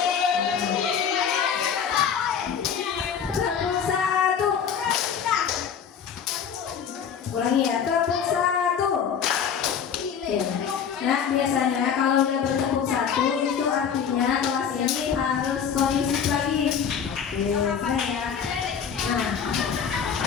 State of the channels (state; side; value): quieter; right; 7.4 dB